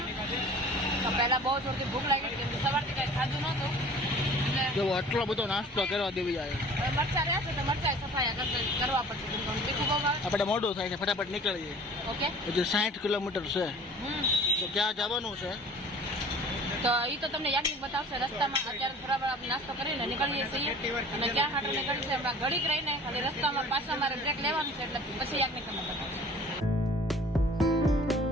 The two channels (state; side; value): normal; both; correlation 0.46